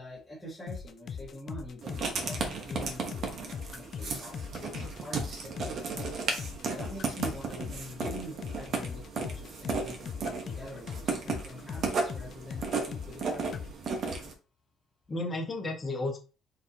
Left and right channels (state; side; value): normal; both; correlation 0.63